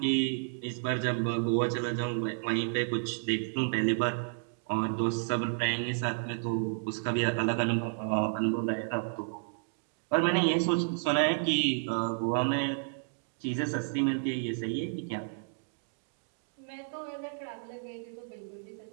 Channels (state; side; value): silent; left; digital silence